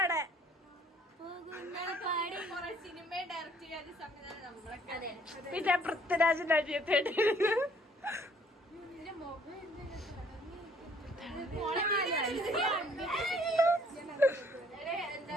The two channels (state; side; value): normal; both; correlation 0.60